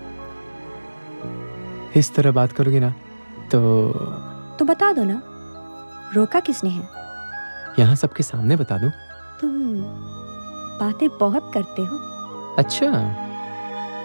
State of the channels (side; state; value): both; inverted; correlation -1.00